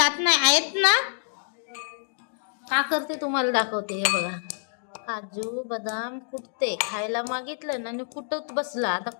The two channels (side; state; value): right; silent; digital silence